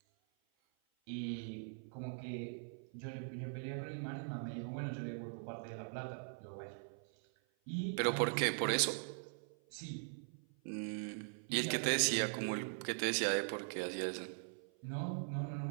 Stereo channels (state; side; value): silent; left; 50 dB below the other